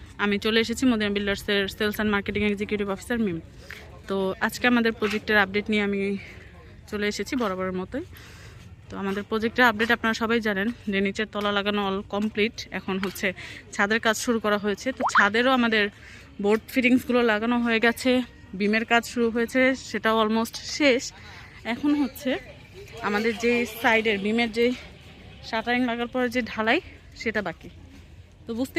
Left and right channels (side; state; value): both; identical; correlation 1.00